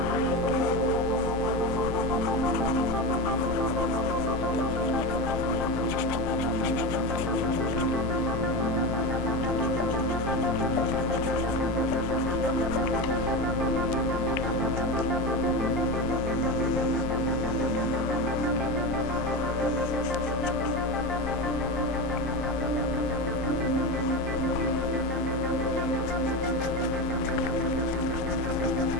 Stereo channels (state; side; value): normal; both; correlation 0.20